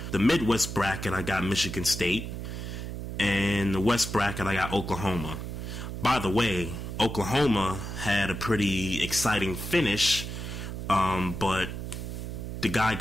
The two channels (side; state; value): right; noise; hum, 6 dB below the sound